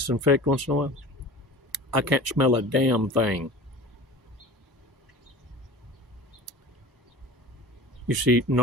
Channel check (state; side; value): normal; both; correlation 0.38